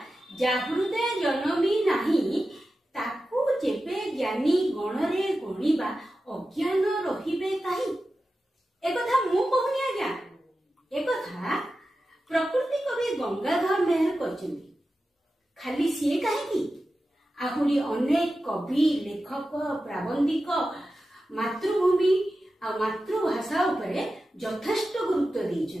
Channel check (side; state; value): both; normal; correlation 0.93